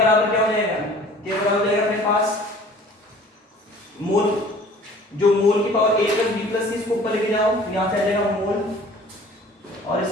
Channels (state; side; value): normal; both; correlation 0.49